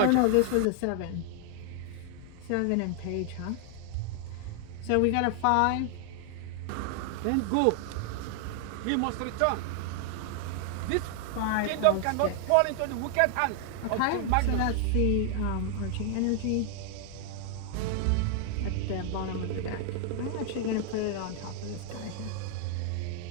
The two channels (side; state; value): both; different; correlation 0.00